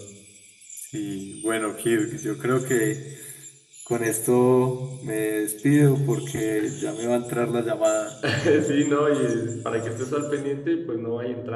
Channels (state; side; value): identical; both; correlation 1.00